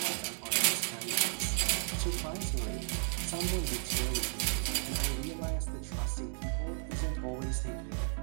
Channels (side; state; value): left; silent; 55 dB below the other